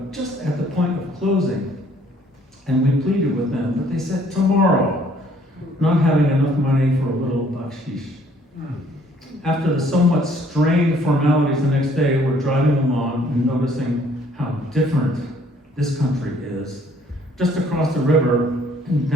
just at the point of closing, and we pleaded with them, but they said tomorrow, not having enough money for a little bakshish. After the somewhat strained formalities the next day, we're driving along and noticing how different this country is. Just across the river and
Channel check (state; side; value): normal; both; correlation 0.61